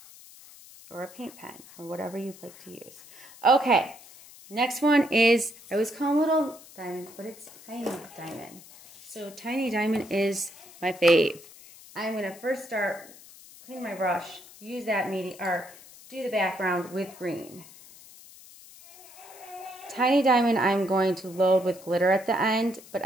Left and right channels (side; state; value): left; noise; hiss, 20 dB below the sound